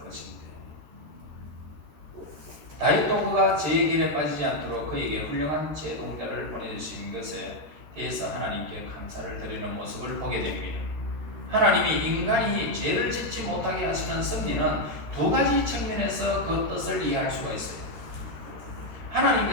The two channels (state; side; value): late; left; 13 ms